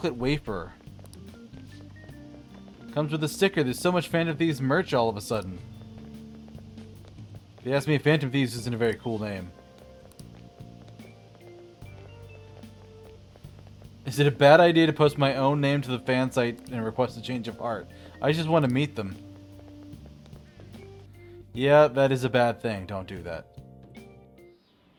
wafer. Comes with a sticker. There's so much Phantom Thieves merch all of a sudden. If you ask me, Phantom Thieves isn't a very cool name. Is it a bad idea to post my own name to the fan site and request a change of heart? I just want to meet them. Yeah, that is a bad thing. Don't do that.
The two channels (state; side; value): identical; both; correlation 1.00